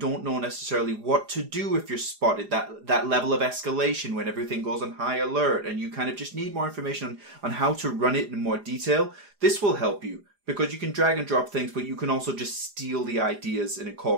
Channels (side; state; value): left; late; 4.9 ms